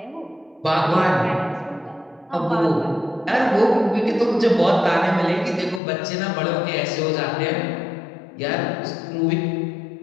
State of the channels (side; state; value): right; drops out; at 5.8 s